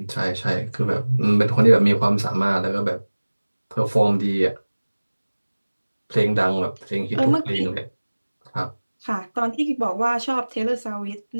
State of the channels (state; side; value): inverted; both; correlation -1.00